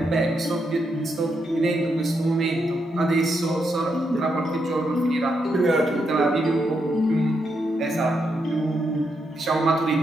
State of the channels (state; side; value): normal; both; correlation 0.81